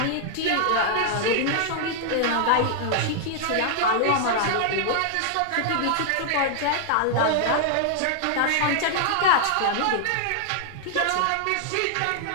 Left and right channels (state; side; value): different; both; correlation -0.01